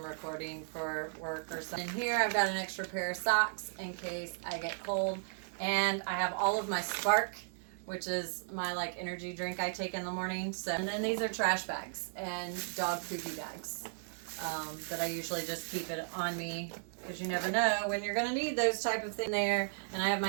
recording for work or something. In here I've got an extra pair of socks in case I get cold, and I have all of my Spark, which is my like energy drink I take in the morning. So, and then these are trash bags and dog poopy bags. That I usually just keep it on me because you never know when you're going to need those type of things there. And I have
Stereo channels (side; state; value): left; silent; 54 dB below the other